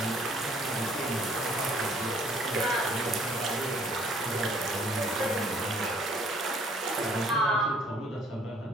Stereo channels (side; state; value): both; normal; correlation 0.59